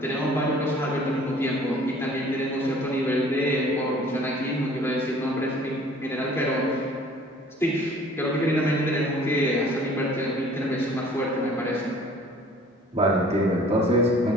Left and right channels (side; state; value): both; normal; correlation 0.52